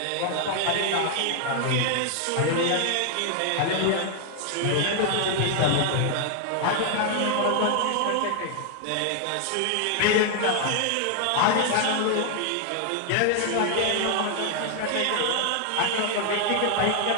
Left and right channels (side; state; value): both; different; correlation 0.00